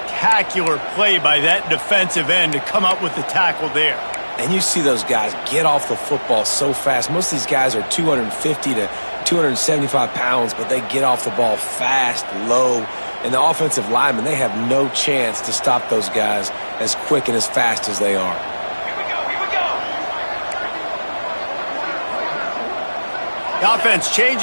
play by that defensive end to come up with the tackle there. And you see those guys get off the football so fast. Most of these guys are 250 to 275 pounds, but they get off the ball fast, low. And the offensive linemen, they have no chance to stop those guys as quick and as fast as they are. The offense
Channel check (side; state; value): both; inverted; correlation -1.00